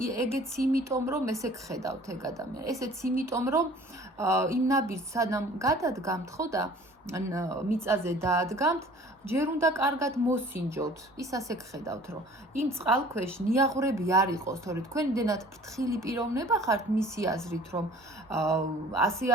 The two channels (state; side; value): normal; both; correlation 0.49